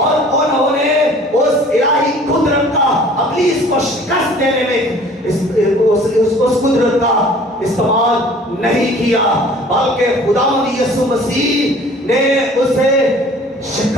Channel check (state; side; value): normal; both; correlation 0.50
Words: انہوں نے اس الہی قدرت کا ابلیس کو شکست دینے میں اس قدرت کا استعمال نہیں کیا، بلکہ خدا یسوع مسیح نے اسے